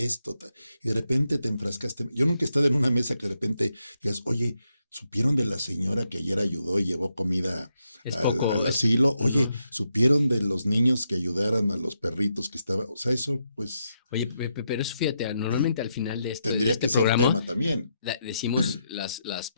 y de repente te enfrascaste. Yo nunca he estado en una mesa que de repente digas, oye, ¿Supieron de la señora que ayer ayudó y llevó comida Es al poco, asilo? Oye, no. ¿supieron de los niños que ayudaran a los perritos que estaban? O sea, eso pues Oye, pero eso fíjate, normalmente al final de tendría este que ser programa tema también. decimos las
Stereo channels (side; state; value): both; inverted; correlation -0.82